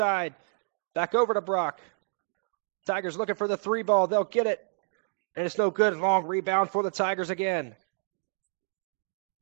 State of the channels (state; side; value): silent; left; digital silence